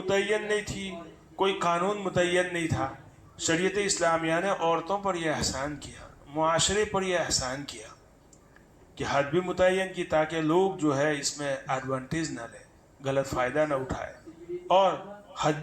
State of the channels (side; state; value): both; identical; correlation 1.00